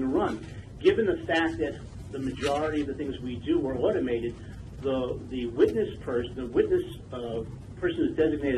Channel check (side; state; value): both; identical; correlation 1.00